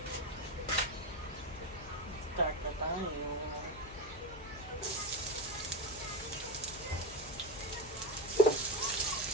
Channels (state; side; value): noise; left; hum, 17 dB below the sound